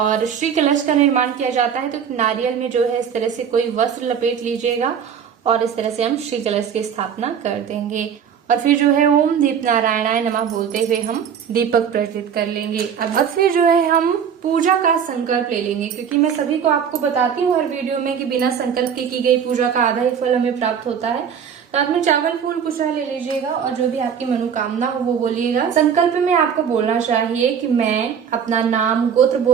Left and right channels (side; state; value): left; quieter; 7.7 dB